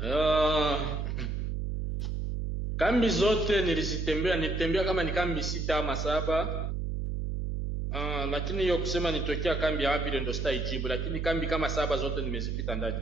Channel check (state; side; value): noise; right; hum, 2 dB below the sound